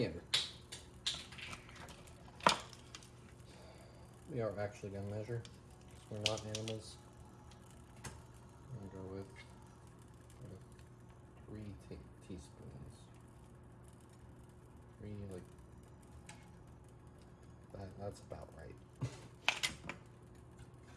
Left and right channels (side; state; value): both; identical; correlation 1.00